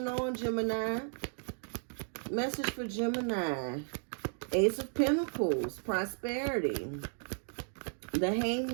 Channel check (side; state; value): left; silent; 55 dB below the other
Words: on, Gemini. Message for Gemini. Ace of Pentacles, prosperity. The